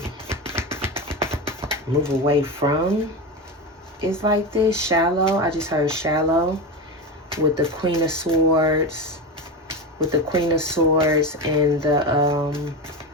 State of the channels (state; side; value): normal; both; correlation 0.20